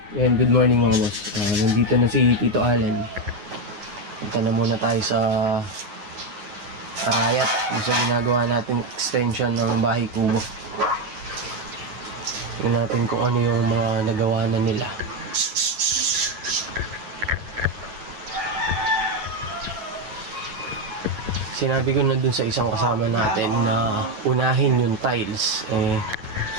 Ayan, good morning mga boss. Nandito na si Tito Allen. Punta na muna tayo sa Arayat. Gusto ginagawa natin extension ng bahay kubo. Tingnan natin kung ano yung mga nagawa na nila. Sinabi ko na dun sa isang kasama natin na unahin yung tiles.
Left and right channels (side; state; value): left; late; 9.6 ms